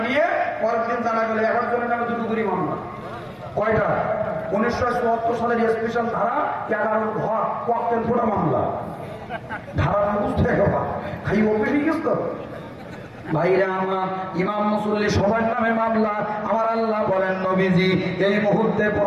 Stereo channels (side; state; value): both; identical; correlation 1.00